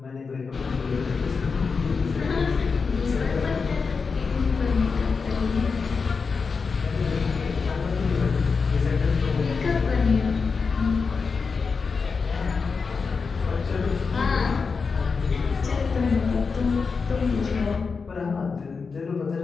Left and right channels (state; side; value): quieter; right; 5.0 dB